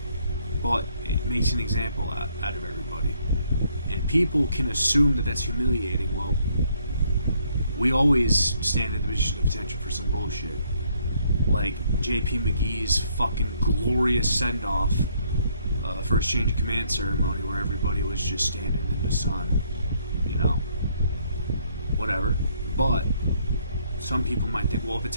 but it makes an example out of everybody. And people can assume that that's humiliating. Well, we always stand in the position of attention for some bullshit. Like J.P. McGee's fucking glorious send-off for his change of command ceremony, where everybody was just standing in the sun, you know, whatever. But some people might think, well, if it's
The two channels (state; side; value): inverted; both; correlation -0.68